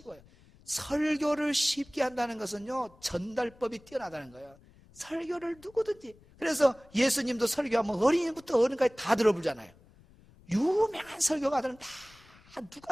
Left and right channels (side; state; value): left; noise; rumble, 26 dB below the sound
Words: 설교를 쉽게 한다는 것은요, 전달법이 뛰어나다는 거예요. 설교를 누구든지. 그래서 예수님도 설교하면 어린이부터 어른까지 다 들어보잖아요. 유명한 설교가들은 다